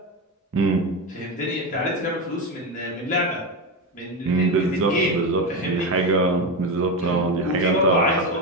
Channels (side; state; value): both; normal; correlation 0.15